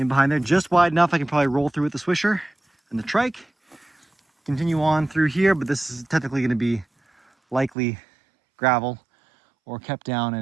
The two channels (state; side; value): drops out; left; at 7.7 s